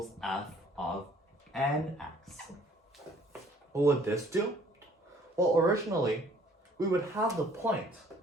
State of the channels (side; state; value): both; normal; correlation 0.58